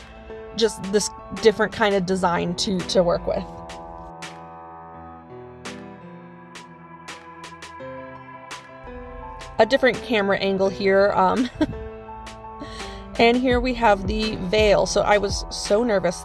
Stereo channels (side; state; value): both; identical; correlation 1.00